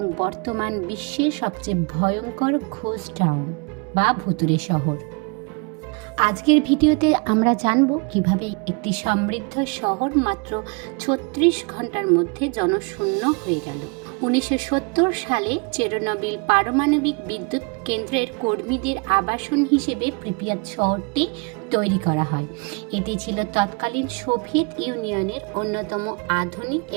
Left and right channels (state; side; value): quieter; left; 32.5 dB